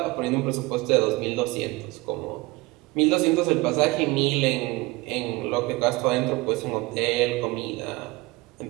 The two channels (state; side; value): quieter; left; 22.4 dB